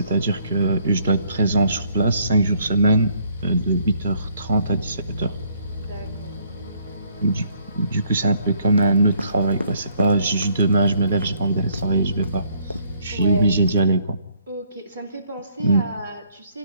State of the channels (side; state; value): both; inverted; correlation -0.66